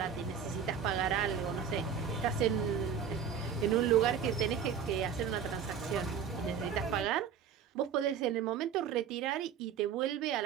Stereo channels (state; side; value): quieter; left; 7.6 dB